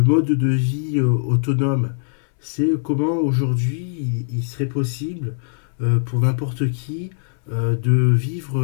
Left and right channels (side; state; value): right; silent; digital silence